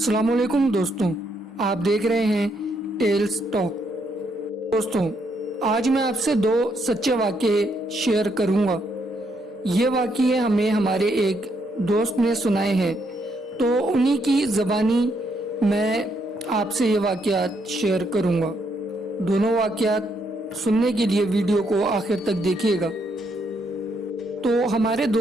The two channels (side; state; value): both; normal; correlation 0.75